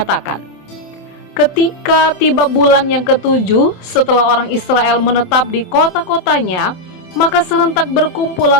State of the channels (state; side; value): late; right; 27 ms